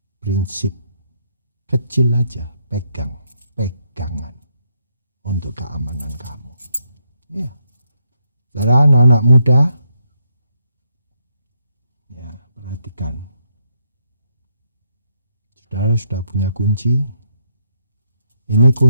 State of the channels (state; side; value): inverted; both; correlation -0.78